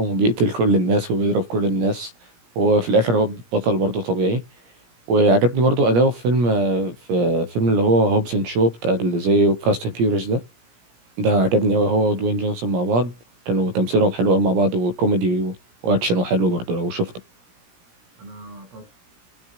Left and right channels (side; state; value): left; late; 17 ms